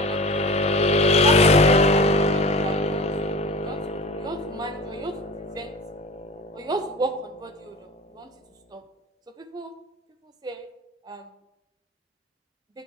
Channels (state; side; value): normal; both; correlation 0.36